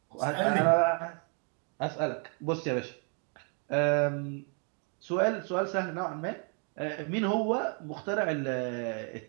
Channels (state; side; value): quieter; left; 39.6 dB